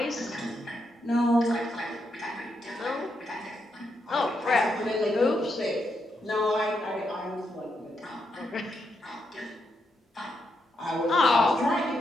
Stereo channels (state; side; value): normal; both; correlation 0.81